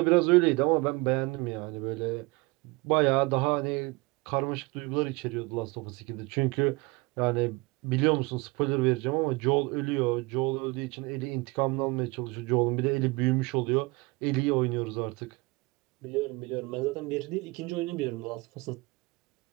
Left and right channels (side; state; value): left; quieter; 25.2 dB